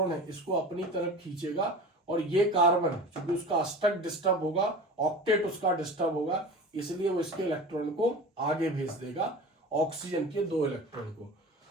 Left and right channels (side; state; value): both; normal; correlation 0.35